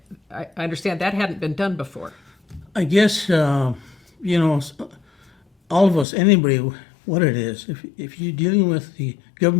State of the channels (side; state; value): right; drops out; at 6.1 s